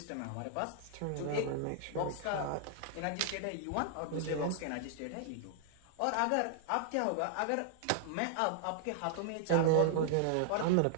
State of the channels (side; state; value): both; different; correlation -0.01